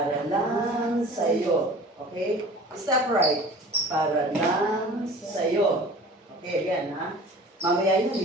lang sa'yo. Okay? Step right. Para lang sa'yo. Okay, again, ha? Mamaya yun,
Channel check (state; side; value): normal; both; correlation 0.43